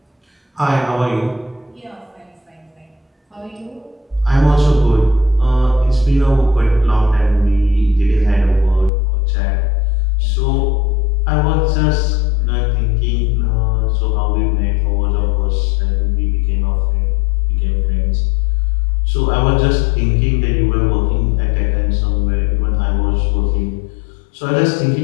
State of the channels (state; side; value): drops out; right; at 8.9 s